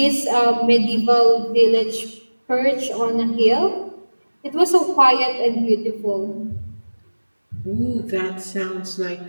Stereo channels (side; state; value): both; inverted; correlation -1.00